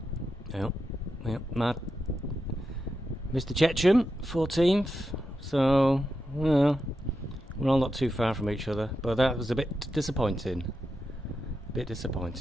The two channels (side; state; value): both; normal; correlation 0.87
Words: Yep, Matt. Mr. Checham, 14th. So, well, we're all not too far from each other, but that was a bit disappointing.